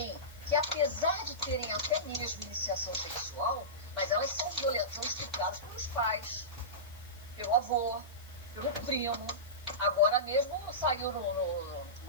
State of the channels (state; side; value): noise; left; hiss, 24 dB below the sound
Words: que, apesar de terem até mesmo iniciação sexual, mas elas são estupradas pelos pelo avô, pelo primo. Agora mesmo saiu